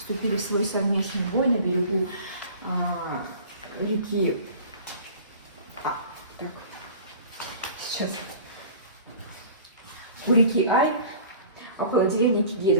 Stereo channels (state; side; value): inverted; both; correlation -0.43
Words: в свой совместный бой на берегу реки. У реки Ай, около деревни